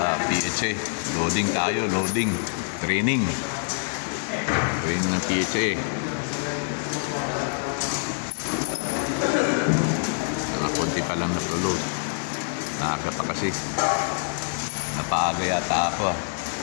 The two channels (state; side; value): silent; right; 61 dB below the other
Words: PHA. Loading tayo, loading. Training. Training ng PHA. Nakakunti pa lang na-load. Naaga pa kasi. Napaaga yata ako.